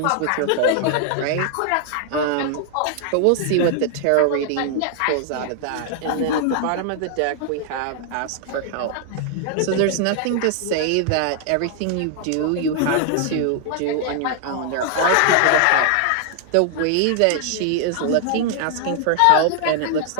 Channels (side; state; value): both; different; correlation 0.00